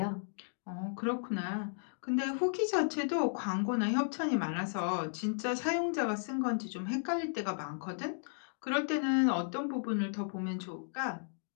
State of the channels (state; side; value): silent; right; digital silence